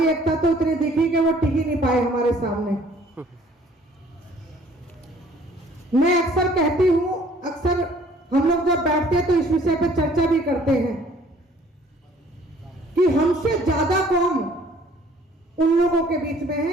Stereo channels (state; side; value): normal; both; correlation 0.57